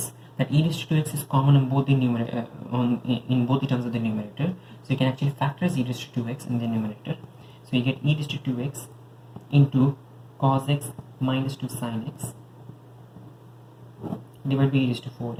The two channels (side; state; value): both; identical; correlation 1.00